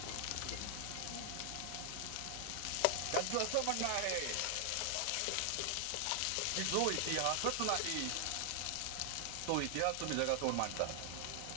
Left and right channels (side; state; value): both; different; correlation 0.00